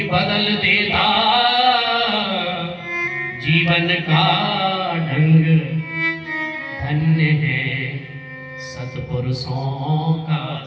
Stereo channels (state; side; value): identical; both; correlation 1.00